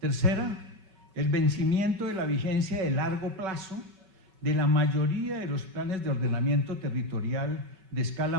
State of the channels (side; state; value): left; late; 5.3 ms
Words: el vencimiento de la vigencia de largo plazo de la mayoría de los planes de ordenamiento territorial de escala